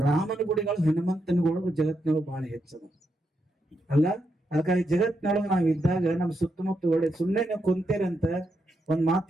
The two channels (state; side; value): normal; both; correlation 0.82